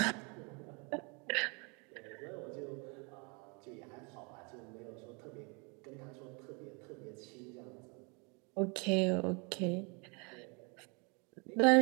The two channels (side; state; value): left; quieter; 32.4 dB